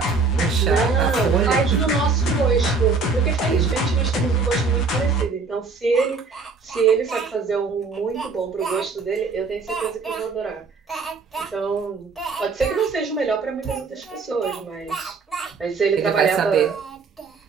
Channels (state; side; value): quieter; left; 4.5 dB